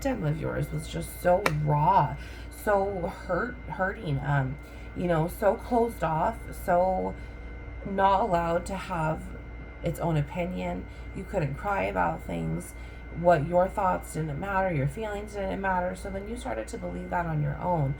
of yours was just so raw, so hurting, you know, so closed off, so not allowed to have its own opinion. You couldn't cry about things. What your thoughts didn't matter, your feelings didn't matter. So then you started to believe that on your own,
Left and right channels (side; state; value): both; identical; correlation 1.00